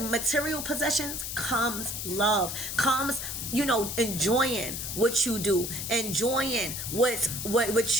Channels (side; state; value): left; noise; hiss, 5 dB below the sound